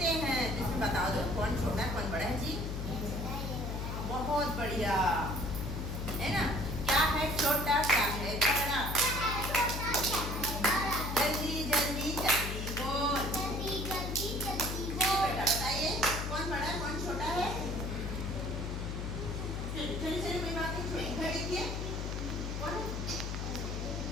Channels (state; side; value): noise; left; hum, 3 dB below the sound